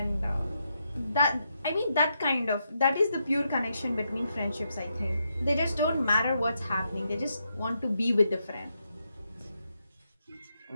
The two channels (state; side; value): inverted; both; correlation -0.82